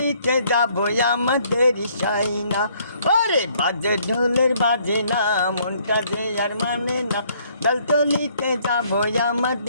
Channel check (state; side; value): inverted; both; correlation -0.65